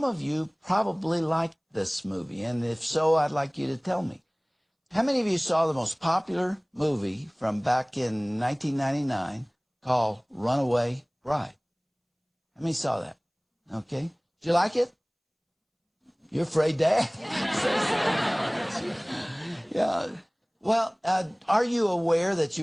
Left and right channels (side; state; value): both; identical; correlation 1.00